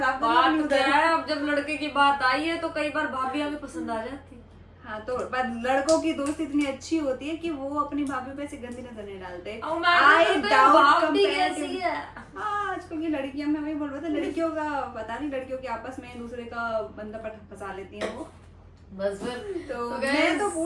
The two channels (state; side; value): identical; both; correlation 1.00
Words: करना अपनी बात क्या उधर। है, अब जब लड़के की बात आई है तो कई बार भाभी हमें पसंद आ जाती। हाँ तो पर लड़कों की दोस्ती इतनी अच्छी होती है कि वो अपनी भाभी पे ऐसे गंदी नजर नहीं डालते। I doubt comparative- हाँ आजकल की लड़कियां, मैं वही बोल रहा था, लड़कियों का पता नहीं, लड़कियों के आपस में दूसरे का बंदा फंसा लेती हैं वो। बस फिर तो guys, मैं तो